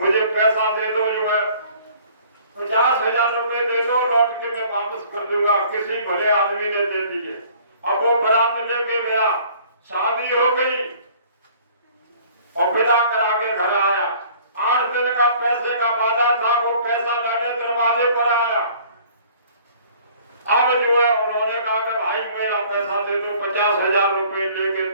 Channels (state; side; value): inverted; both; correlation -0.53